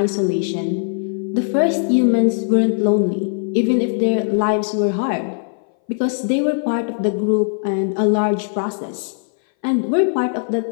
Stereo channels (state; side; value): silent; right; 62 dB below the other